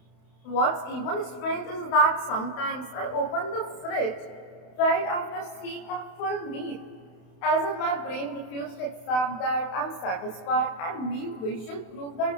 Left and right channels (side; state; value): right; late; 32 ms